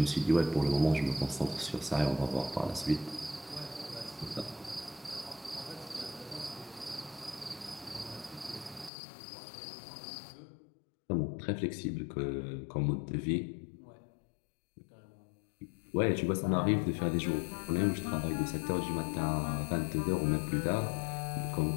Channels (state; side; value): drops out; right; at 8.9 s